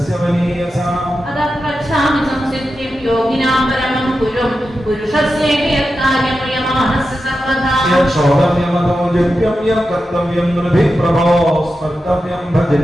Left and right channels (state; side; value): normal; both; correlation 0.90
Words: വനീയസാം അതപ്രച്ഛാമി സംസിദ്ധിം യോഗിനാം പരമം ഗുരും പുരുഷസ്യേകയത്കാര്യമയമാനസ്യ സർവദാ യക്ഷോദമ്യമതോ ജപ്യം യം കർത്തവ്യം നൃഭി പ്രഭോ സ്മർത്തവ്യം